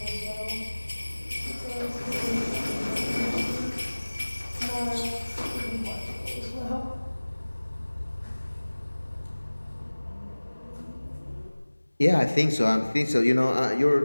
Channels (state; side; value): inverted; both; correlation -1.00